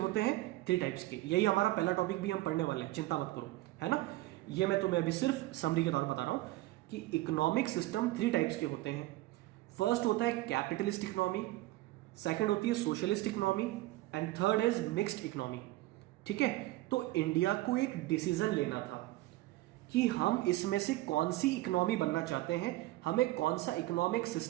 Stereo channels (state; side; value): quieter; left; 17.8 dB